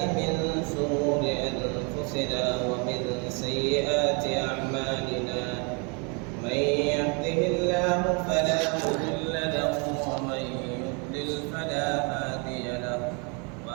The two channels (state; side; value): quieter; left; 33.5 dB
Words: من شرور أنفسنا ومن سيئات أعمالنا من يهده الله فلا مضل له ومن يضلل فلا هادي له